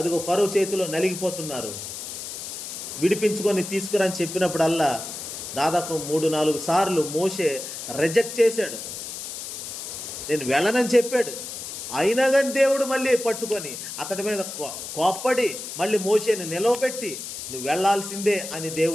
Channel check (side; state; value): left; noise; hiss, 8 dB below the sound